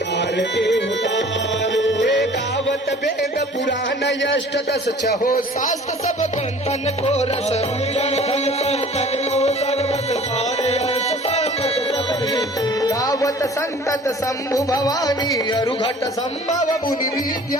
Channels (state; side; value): normal; both; correlation 0.49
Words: आरती उतारो हे गावत वेद पुराण यष्ट दस छहो शास्त्र सब ग्रंथन को रस गावत संतत शंभु भवानी अरुघट संभव मुनि